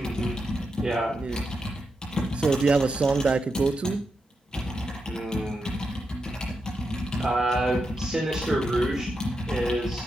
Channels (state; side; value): normal; both; correlation 0.86